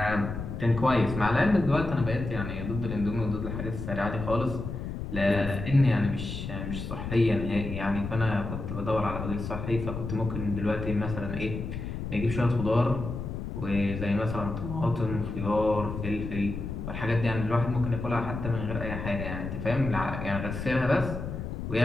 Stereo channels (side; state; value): left; noise; rumble, 6 dB below the sound